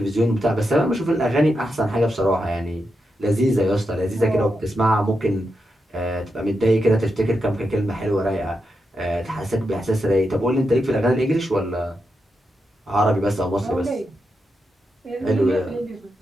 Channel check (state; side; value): normal; both; correlation 0.86